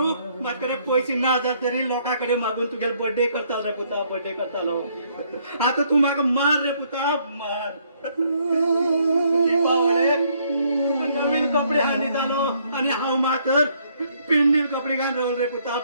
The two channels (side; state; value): both; inverted; correlation -0.68